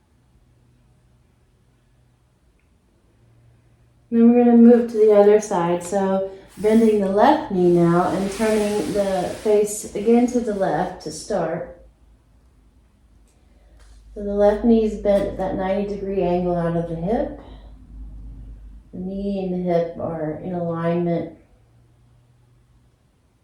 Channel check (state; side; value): identical; both; correlation 1.00